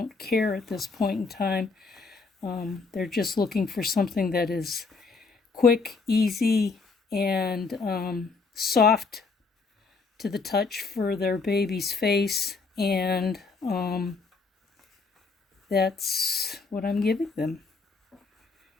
care at this point in time. They're just looking for something that is quick, easy, and soft to the touch for their baby's face, and that's what I'm giving them.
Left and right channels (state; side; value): quieter; right; 4.3 dB